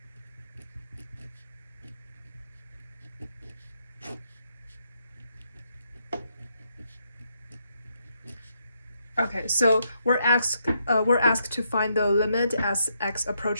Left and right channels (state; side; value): inverted; both; correlation -0.78